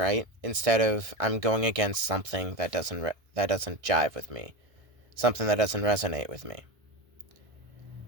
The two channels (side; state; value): left; late; 1.6 ms